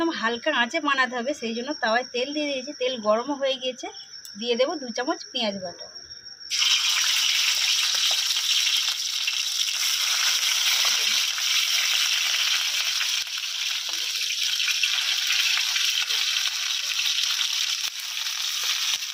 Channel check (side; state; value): both; identical; correlation 1.00